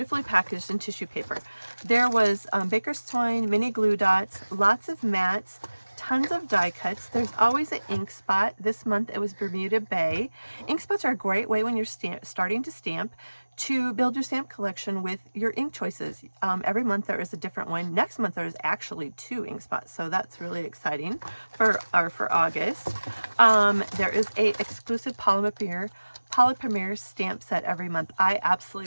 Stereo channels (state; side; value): inverted; both; correlation -1.00